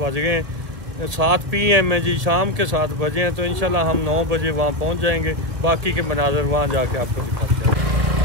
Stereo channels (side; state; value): left; late; 1.5 ms